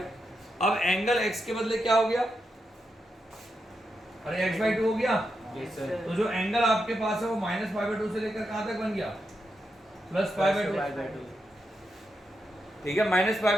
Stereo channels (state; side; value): normal; both; correlation 0.85